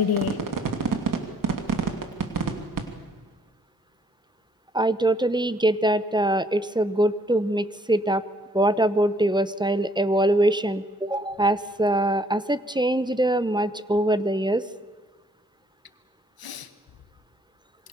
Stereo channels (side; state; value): both; normal; correlation 0.65